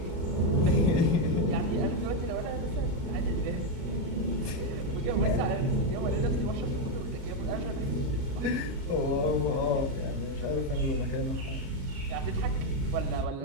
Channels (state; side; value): late; left; 37 ms